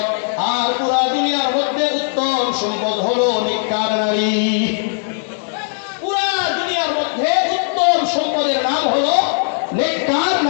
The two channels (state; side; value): silent; right; 67 dB below the other